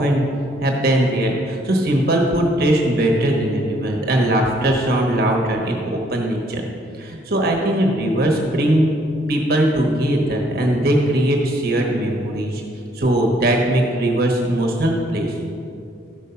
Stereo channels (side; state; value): both; normal; correlation 0.66